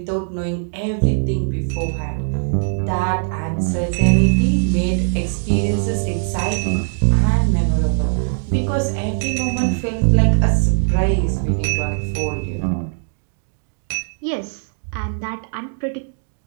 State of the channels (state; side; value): silent; left; digital silence